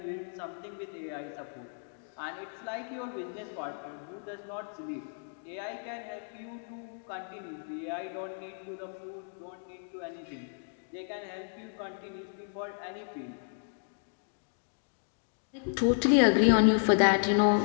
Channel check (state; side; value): silent; right; digital silence